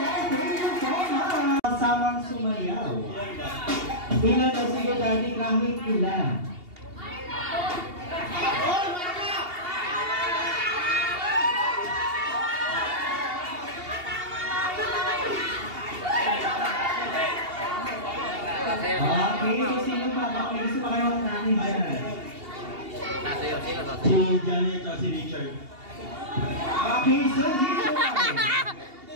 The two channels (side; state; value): left; late; 2.8 ms